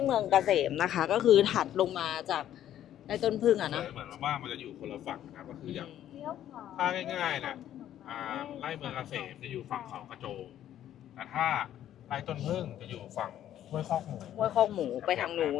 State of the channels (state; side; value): quieter; right; 11.5 dB